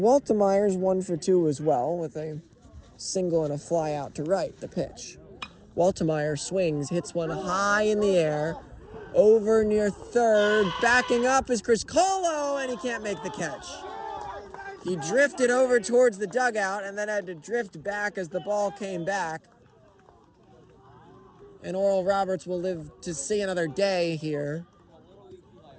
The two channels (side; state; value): both; identical; correlation 1.00